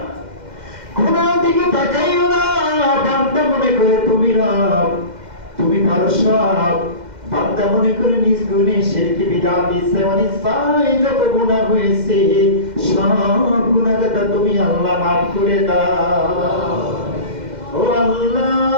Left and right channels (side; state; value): left; late; 2.1 ms